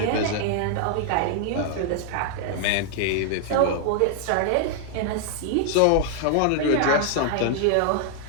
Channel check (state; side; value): different; both; correlation 0.00